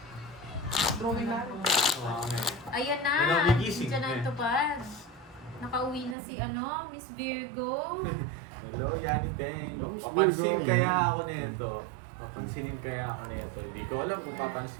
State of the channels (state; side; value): drops out; left; at 6.2 s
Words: Drawing laro. Ayan na. Hello, may gising. Diyan na Eh. yung tupad. Nakauwi na si Miss Virgo. Hello, Yani Beng. Hello, Miss Papansin Virgo. kaya ako nito. Papansinin kaya ako nito. Hindi ko alam kung